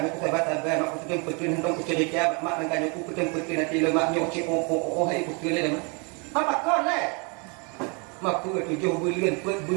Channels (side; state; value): left; quieter; 33.1 dB